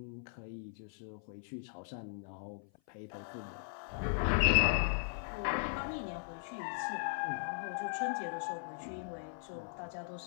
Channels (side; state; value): right; silent; 52 dB below the other